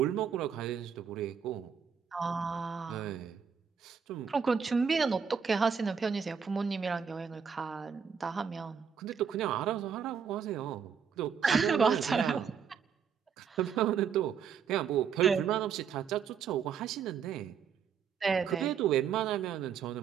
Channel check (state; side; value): quieter; left; 7.0 dB